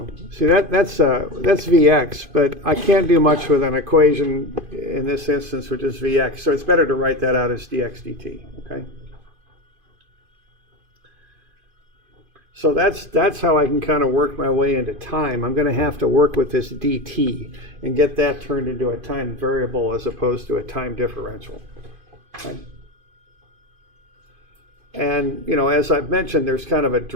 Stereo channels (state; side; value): late; left; 2.5 ms